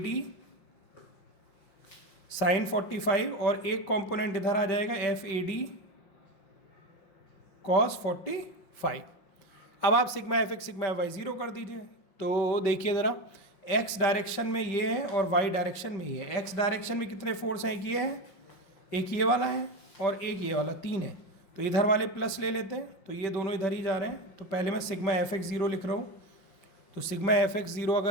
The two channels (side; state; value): right; late; 5.6 ms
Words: साइन 45, और एक कंपोनेंट इधर आ जाएगा एफ ए डी कॉस 45। अब आप sigma F X sigma F Y 0 कर दीजिए। तो देखिए ज़रा, एक्स डायरेक्शन में ये है और वाई डायरेक्शन में ये है। एक्स डायरेक्शन में कितने फोर्स हैं, एक ये है, एक ये वाला है और एक ये वाला, 3 है। तो इधर वाले प्लस ले लेते हैं, तो ये दोनों इधर ही जा रहे हैं। तो पहले मैं सिग्मा एफ एक्स ज़ीरो लिख रहा हूँ। तो सिग्मा एफ एक्स ज़ीरो